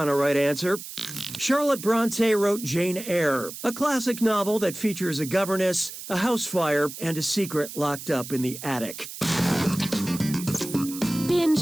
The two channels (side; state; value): right; noise; hiss, 11 dB below the sound